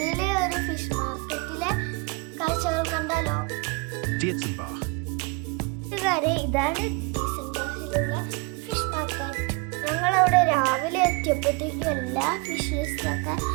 ഒരു ഫിഷ് മാർക്കറ്റിലെ കാഴ്ചകൾ കണ്ടാലോ? കൂട്ടുകാരെ, ഇതാണ് ഡീസൻബാഹിലുള്ള ഫിഷ് മാർക്കറ്റ്. ഞങ്ങളവിടെ രാവിലെ എത്തിയപ്പോഴത്തേക്കും എല്ലാ ഫിഷസൊക്കെ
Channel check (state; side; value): quieter; left; 28.8 dB